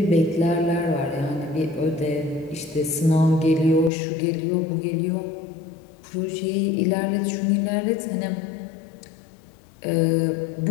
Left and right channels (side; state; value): right; drops out; at 3.9 s